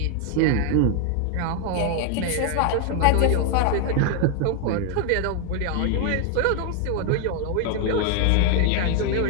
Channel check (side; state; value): both; different; correlation 0.00